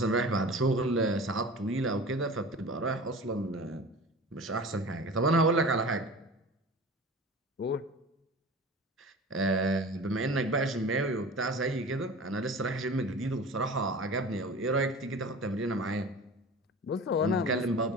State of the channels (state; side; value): normal; both; correlation 0.37